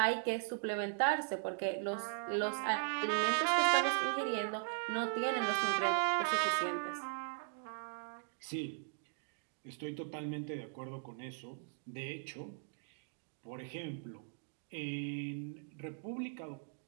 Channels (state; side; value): silent; left; digital silence